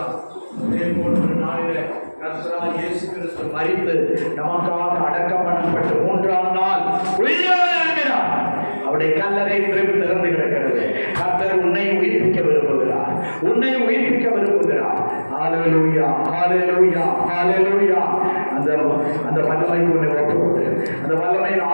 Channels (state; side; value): inverted; both; correlation -1.00